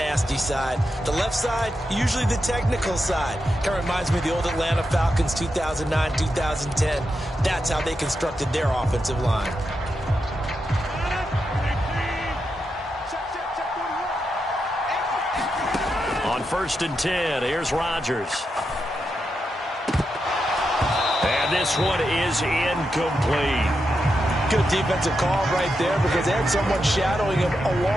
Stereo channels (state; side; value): normal; both; correlation 0.86